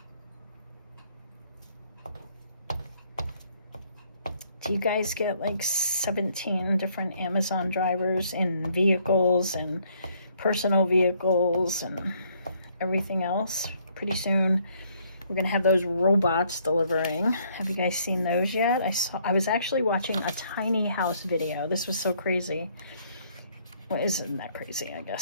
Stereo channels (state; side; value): inverted; both; correlation -0.66